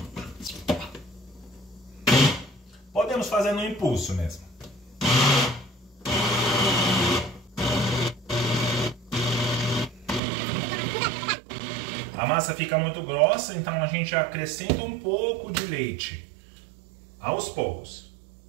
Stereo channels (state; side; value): drops out; left; at 10.2 s